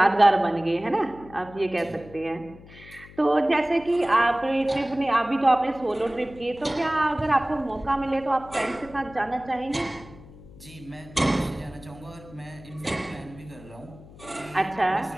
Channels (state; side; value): noise; left; hum, 20 dB below the sound